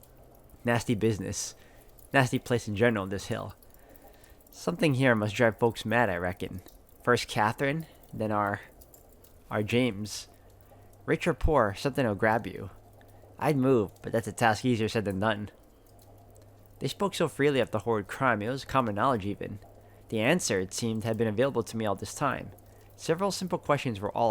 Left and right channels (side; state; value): both; identical; correlation 1.00